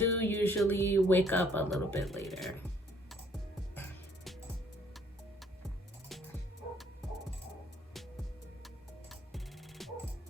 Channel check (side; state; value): both; normal; correlation 0.62